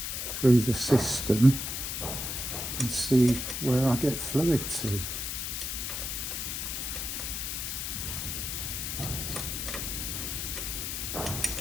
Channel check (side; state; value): left; noise; hiss, 3 dB below the sound